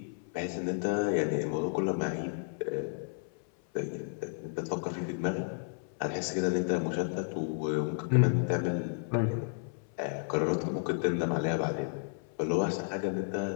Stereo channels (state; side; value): silent; right; 56 dB below the other